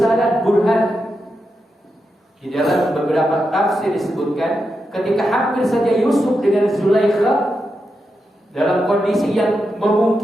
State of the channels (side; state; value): both; normal; correlation 0.87